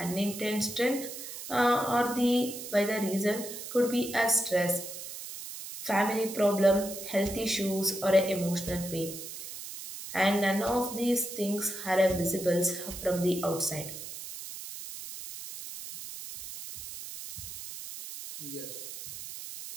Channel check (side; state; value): right; noise; hiss, 10 dB below the sound